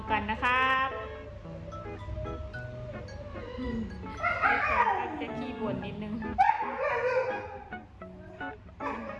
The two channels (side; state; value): both; identical; correlation 1.00